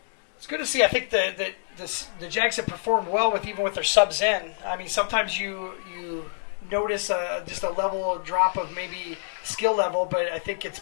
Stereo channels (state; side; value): silent; right; digital silence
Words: It's good to see. I think the Jags have performed well even with their subs in. I mean, sometimes you notice just a level drop of maybe skill level, but I think it's